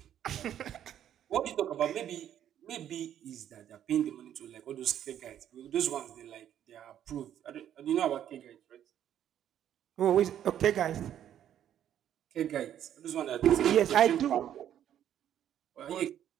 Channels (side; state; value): left; quieter; 10.5 dB